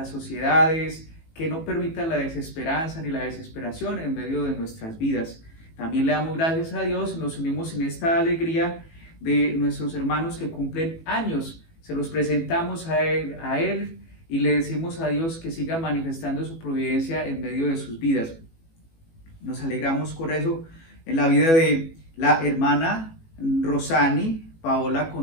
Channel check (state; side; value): late; right; 18 ms